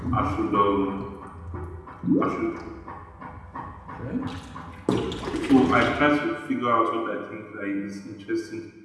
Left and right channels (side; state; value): both; identical; correlation 1.00